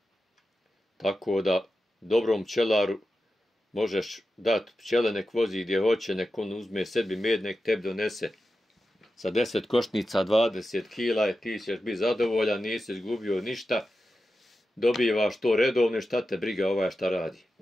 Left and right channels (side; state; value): both; normal; correlation 0.91